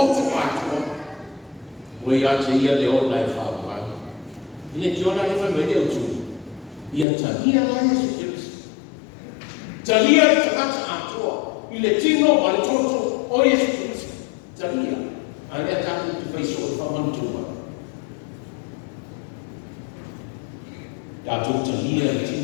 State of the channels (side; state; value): right; drops out; at 7.1 s